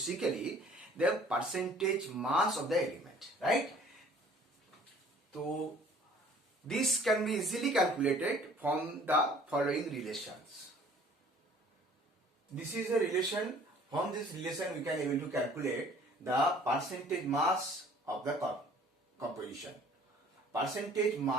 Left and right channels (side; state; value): both; normal; correlation 0.53